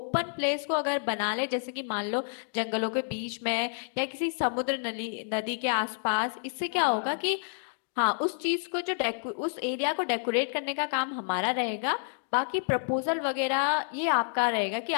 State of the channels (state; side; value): silent; right; digital silence